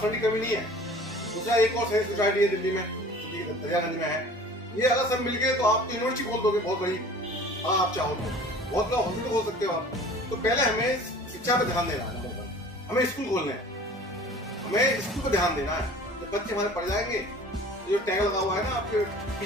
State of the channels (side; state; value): both; normal; correlation 0.45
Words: फंड की कमी नहीं है। दूसरा एक और सैनिक सोसाइटी है दिल्ली में, दरियागंज में है, ये अगर सब मिल गए तो आप तो यूनिवर्सिटी खोल दोगे बहुत बड़ी, हाँ आप चाहो तो बहुत बड़ा हॉस्पिटल खोल सकते हो आप। तो पहले हमें शिक्षा पे ध्यान देना है, हमें स्कूल खोलने हैं, हमें स्कूल पे ध्यान देना है। जब बच्चे हमारे पढ़ जाएंगे, जो टैग लगा हुआ है ना आपके